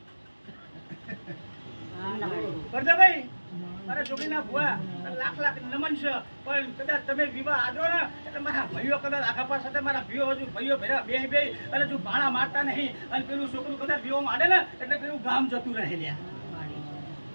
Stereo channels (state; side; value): inverted; both; correlation -1.00